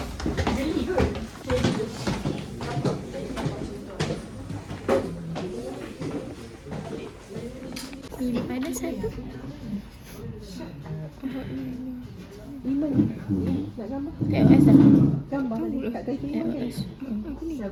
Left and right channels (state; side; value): identical; both; correlation 1.00